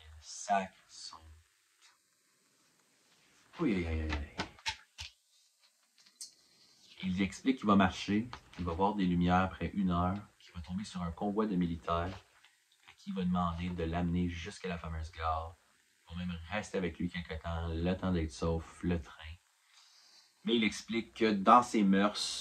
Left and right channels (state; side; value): identical; both; correlation 1.00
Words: sacre son... Oui. Il explique qu'il va marcher, qu'il va voir des lumières après 1 heure, qu'il va tomber sur un convoi de militaires et qu'il va demander de l'amener jusqu'à la fameuse gare. Ils vont même rester avec lui quelque temps, le temps d'être sauf, le train. Mais il explique que dans ses